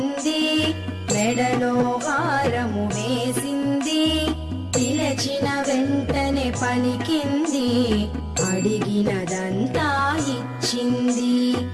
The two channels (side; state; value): both; identical; correlation 1.00